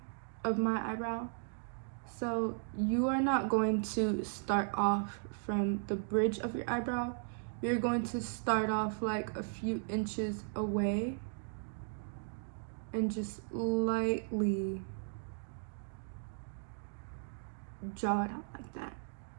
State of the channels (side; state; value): left; silent; digital silence